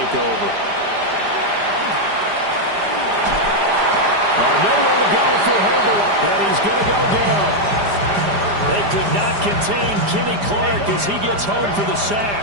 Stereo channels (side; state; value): left; late; 4.9 ms